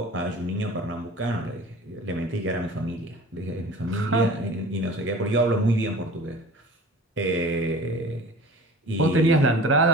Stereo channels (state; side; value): normal; both; correlation 0.41